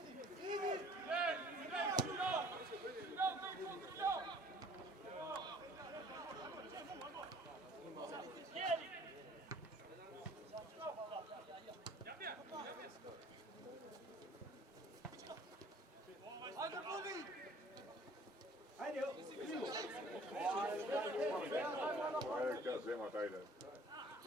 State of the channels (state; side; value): normal; both; correlation 0.53